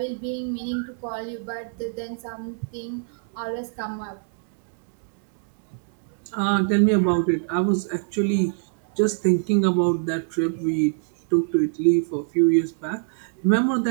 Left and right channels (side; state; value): left; silent; digital silence